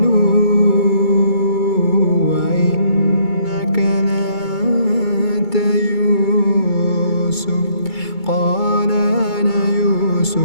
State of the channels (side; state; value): right; late; 2.3 ms